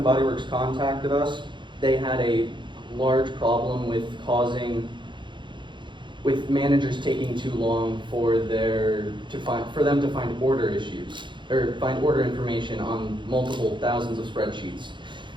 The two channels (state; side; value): late; left; 0.23 ms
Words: & Body Works contacted us, they had a large problem with managers taking too long for them to find order issues or find order information on multiple thousands of spreadsheets.